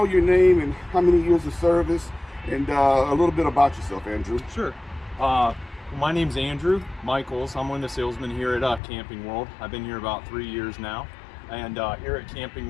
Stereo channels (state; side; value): drops out; right; at 8.8 s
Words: your name and how many years of service, and a little bit about yourself, Andrew. Sure. My name's Andrew Michaels. I'm one of the salesmen here at Camping World. I've been here about 3 years now. And here at Camping